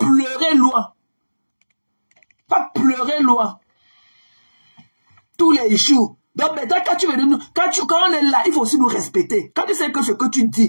pleurer loin. Tous les jours. Donc maintenant, quand on est là, il faut aussi nous respecter. Quand tu sais que ce que tu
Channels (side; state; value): both; inverted; correlation -1.00